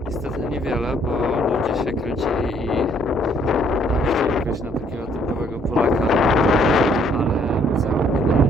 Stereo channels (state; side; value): normal; both; correlation 0.64